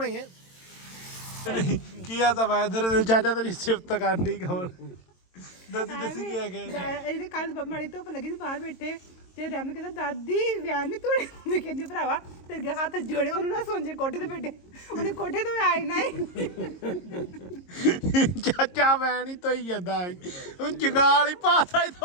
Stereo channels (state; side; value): late; right; 22 ms